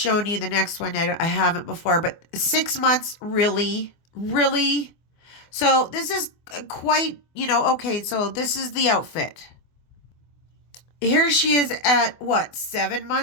you. The next one I haven't before. But 6 months, really? Really? So this is quite, okay, so this is the outfit. Here she is at, 7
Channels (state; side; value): late; right; 24 ms